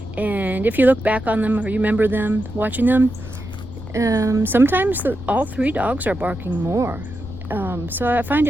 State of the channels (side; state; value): left; noise; rumble, 12 dB below the sound